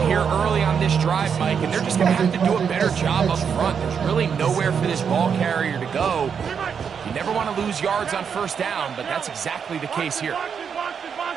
here early on this drive, Mike, and they're just going to have to do a better job up front. There's really nowhere for this ball carrier to go. You never want to lose yards on first down, but that's exactly the case here.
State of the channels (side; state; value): left; quieter; 6.9 dB